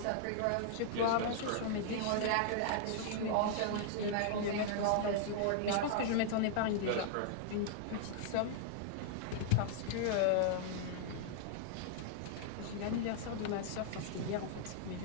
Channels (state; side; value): different; both; correlation -0.01